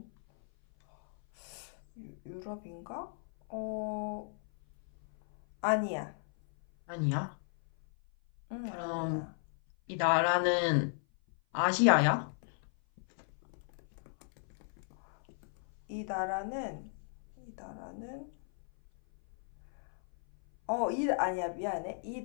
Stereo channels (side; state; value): right; silent; 54 dB below the other